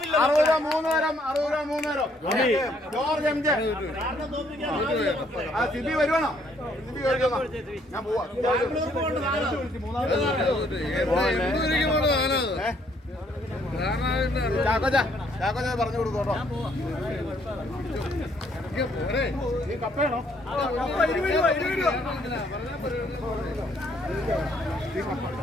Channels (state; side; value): normal; both; correlation 0.67